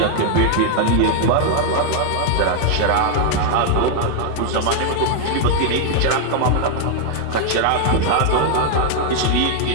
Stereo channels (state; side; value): different; both; correlation 0.00